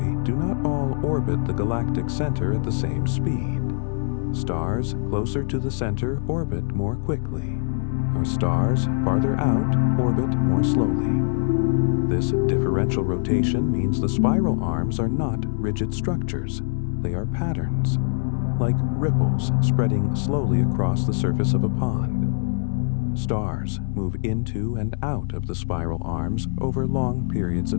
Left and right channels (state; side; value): silent; right; digital silence